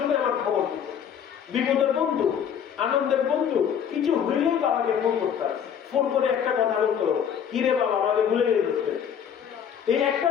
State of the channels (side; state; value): right; quieter; 8.3 dB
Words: আমার খবর দিত, বিপদের বন্ধু, আনন্দের বন্ধু, কিছু হইলেই বাবাকে ফোন করতাম, ফোন করে একটা কথা বলতো, কিরে বাবা আমাকে ভুলে গেছে। এই একটা